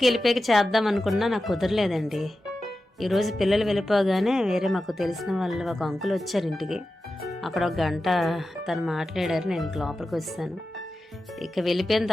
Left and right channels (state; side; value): normal; both; correlation 0.92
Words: వెళ్ళిపోయాక చేద్దాం అనుకున్నా నాకు కుదరలేదండి. ఈరోజు పిల్లలు వెళ్ళిపోగానే వేరే మాకు తెలిసిన వాళ్ళు ఒక అంకుల్ వచ్చారు ఇంటికి. అక్కడ ఒక గంట తను మాట్లాడారు, నేను ఇంక లోపలికి వచ్చాను. ఇక వెళ్ళిపోయిన